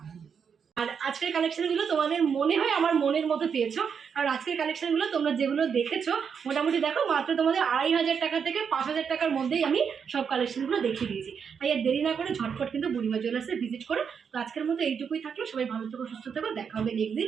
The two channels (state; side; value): quieter; left; 6.7 dB